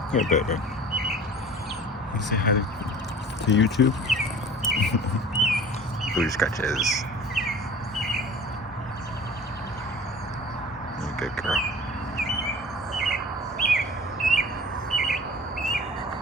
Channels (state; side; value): normal; both; correlation 0.42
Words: Here, baby. You say hi to YouTube? Booty scratches. You're a good girl.